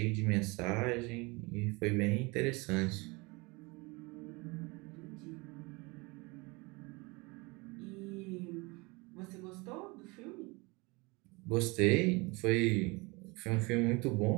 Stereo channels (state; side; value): quieter; left; 26.1 dB